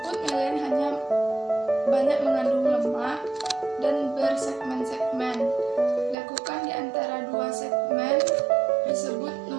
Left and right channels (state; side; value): drops out; left; at 6.2 s